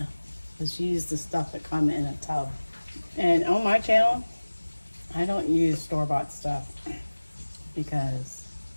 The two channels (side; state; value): both; inverted; correlation -1.00